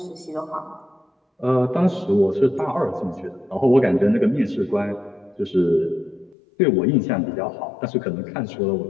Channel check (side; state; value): right; drops out; at 6.4 s